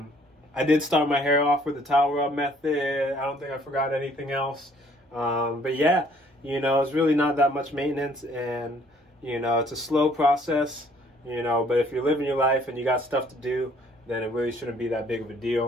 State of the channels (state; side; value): normal; both; correlation 0.60